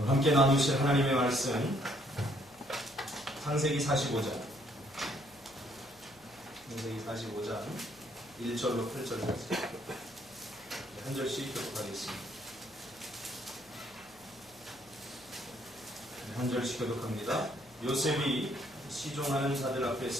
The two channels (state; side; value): noise; left; hum, 28 dB below the sound